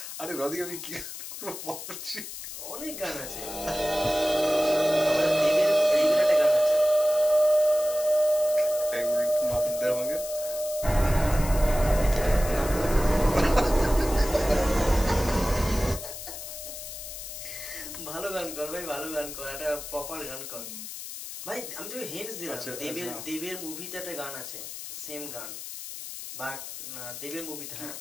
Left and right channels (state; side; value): noise; left; hiss, 10 dB below the sound